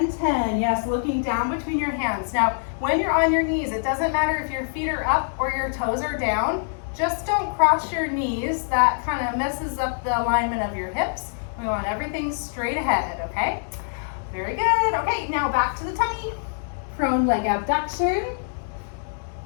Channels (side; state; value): right; silent; digital silence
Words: 10. Yes, looking down between your hands. Now, when you're on your knees, it doesn't matter if your feet are up or your toes are down. Just don't cross your knees. That kind of messes up the alignment of your hips. We want everything straight ahead, okay? Very good. Okay, now back to the tummy. Prone leg abduction.